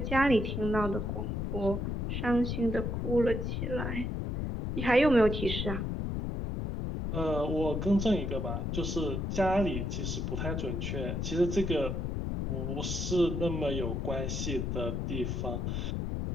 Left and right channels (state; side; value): noise; left; rumble, 1 dB below the sound